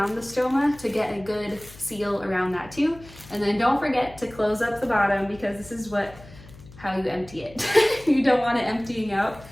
the stoma to get a good seal around that too. And then don't forget to close up the bottom because this is how you empty it. You don't want it emptying out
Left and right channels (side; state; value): left; noise; hum, 20 dB below the sound